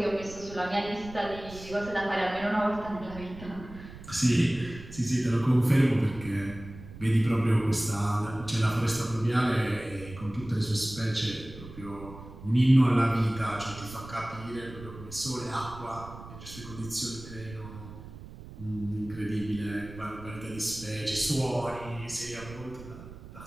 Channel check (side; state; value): right; noise; rumble, 15 dB below the sound